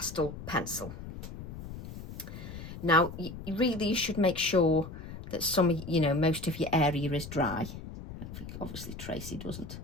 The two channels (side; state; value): left; noise; rumble, 11 dB below the sound